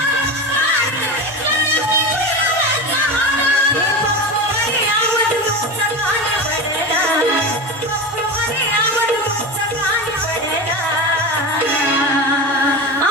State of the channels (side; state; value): both; normal; correlation 0.24